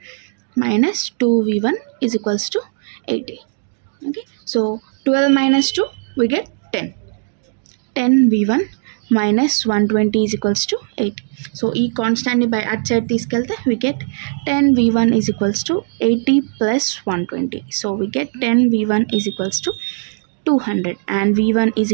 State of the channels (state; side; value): silent; left; digital silence